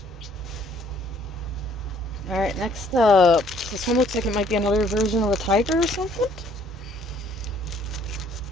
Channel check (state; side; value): normal; both; correlation 0.61